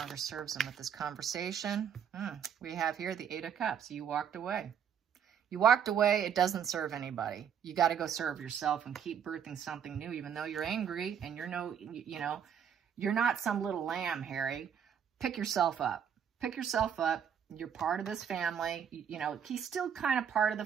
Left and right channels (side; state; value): left; quieter; 8.2 dB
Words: serves them with this conversation. We have here the 8 of Cups. You walked away. You walked away. It doesn't serve anybody. You got to go serve yourself and keep birthing something new, even though you're angry and you're you're not some little lamb, Harry. Pick yourself up. pick yourself up. You're part of this family. You know, he's still kind of part of the